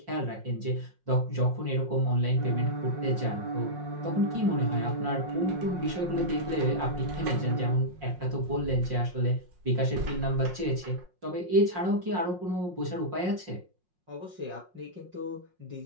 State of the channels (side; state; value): left; late; 5.5 ms